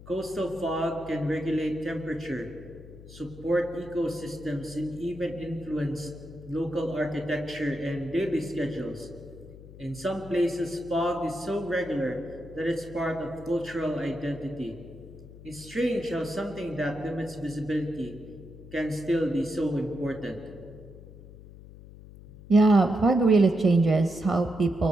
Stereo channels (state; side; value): noise; left; hum, 17 dB below the sound